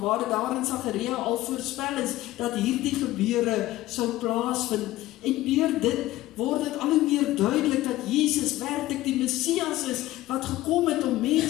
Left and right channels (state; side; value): quieter; right; 16.2 dB